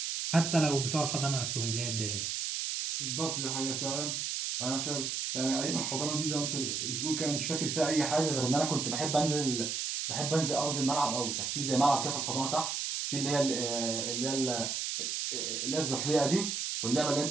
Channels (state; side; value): noise; right; hiss, 2 dB below the sound